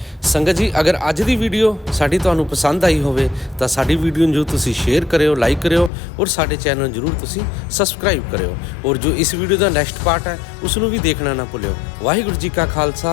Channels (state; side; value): drops out; right; at 5.9 s